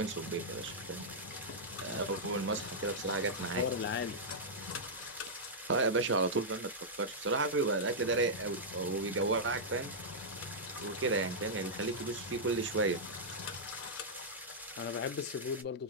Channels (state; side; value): normal; both; correlation -0.09